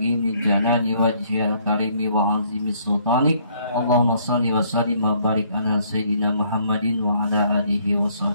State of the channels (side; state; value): both; inverted; correlation -0.65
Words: li jalali wajhil karimi wa azimi sultanik. Allahumma shalli wa sallim wa barik ala sayyidina Muhammadin wa ala alihi wa